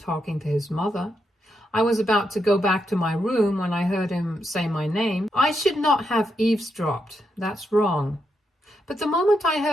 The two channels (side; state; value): both; normal; correlation 0.82